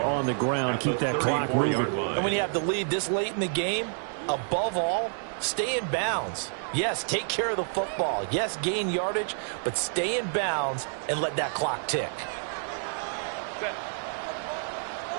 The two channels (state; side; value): silent; left; digital silence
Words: the ground, keep that clock moving. And when you have the lead this late in the game, above all, stay in bounds. Yes, take care of the football. Yes, gain yardage, but stay in bounds and let that clock tick.